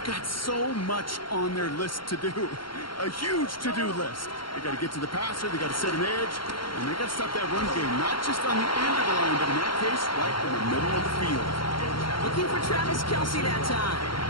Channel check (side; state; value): right; late; 0.73 ms